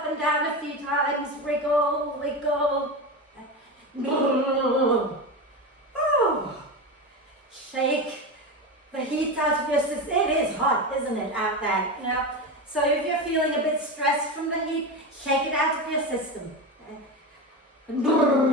and down a few times, wriggle, wiggle. Oh. Shake the heat out of your system. It is hot, isn't it, out there? You know? So if you're feeling a bit stressed from the heat, shake it out of your system.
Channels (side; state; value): both; normal; correlation 0.20